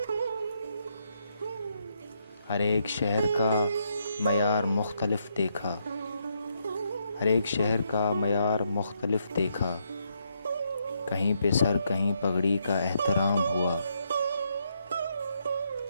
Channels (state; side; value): inverted; both; correlation -0.77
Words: ہر ایک شہر کا معیار مختلف دیکھا، ہر ایک شہر کا معیار مختلف دیکھا. کہیں پہ سر کہیں پگڑی کا احترام ہوا.